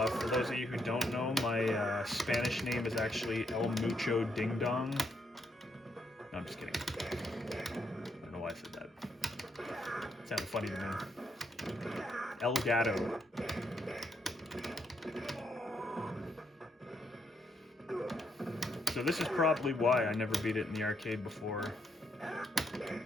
those of you who don't know, my Spanish name is actually El Mucho Ding Dong. No, I'm just kidding. I don't know why I said that. It sounded funny to me. El Gato. So this is probably why I never beat it in the arcade before.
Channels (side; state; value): both; normal; correlation 0.76